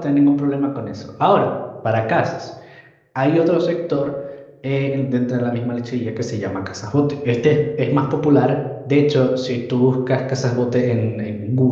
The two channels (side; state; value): both; identical; correlation 1.00